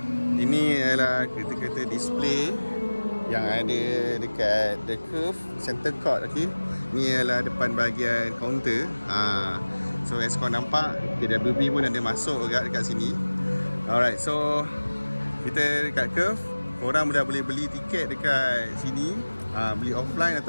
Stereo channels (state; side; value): inverted; both; correlation -1.00